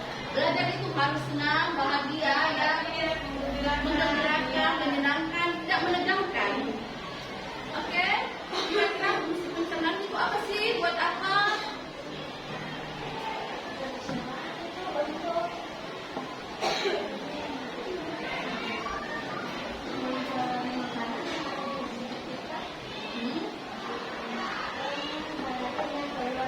Belajar itu harus senang, bahagia, ya, menggembirakan, menyenangkan, tidak menegangkan. Oke, kira-kira fungsi pencernaan itu apa sih? Buat apa?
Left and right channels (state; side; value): identical; both; correlation 1.00